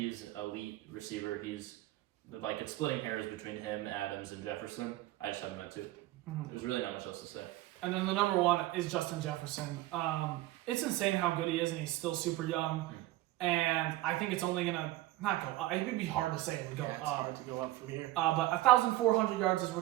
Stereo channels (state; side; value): quieter; left; 16.8 dB